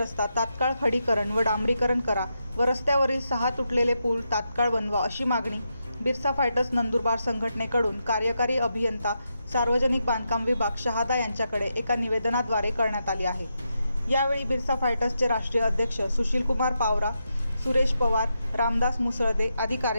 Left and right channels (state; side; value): inverted; both; correlation -0.85